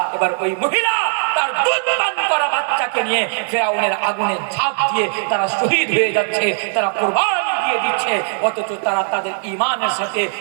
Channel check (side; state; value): left; silent; digital silence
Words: এবার ওই মহিলা তার দুধ পান করা বাচ্চাকে নিয়ে ফিরাউনের আগুনে ঝাঁপ দিয়ে তারা শহীদ হয়ে যাচ্ছে, তারা কুরবানি দিয়ে দিচ্ছে। অথচ তারা তাদের ইমানের সাথে,